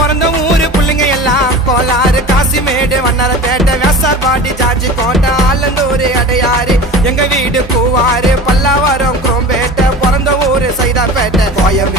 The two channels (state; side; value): normal; both; correlation 0.35